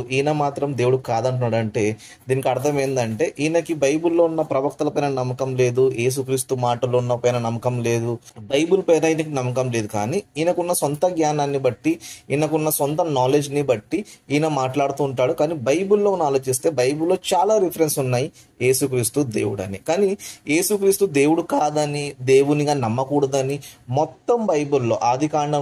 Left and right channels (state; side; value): identical; both; correlation 1.00